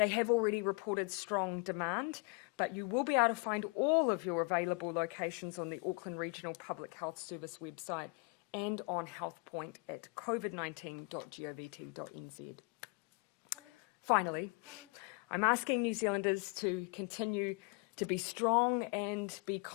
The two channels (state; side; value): quieter; right; 30.9 dB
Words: have already reported strong demand, but you will be able to find all of your available locations on the Auckland Regional Public Health Service website and on HealthPoint at covid19.govt.nz. Finally, I'm asking New Zealanders to continue to be strong and be